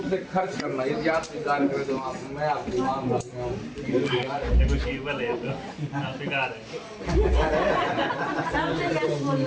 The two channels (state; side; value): identical; both; correlation 1.00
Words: से खर्च करना। यदि आप स्वीकार करें तो मैं आपकी मांग करता हूँ।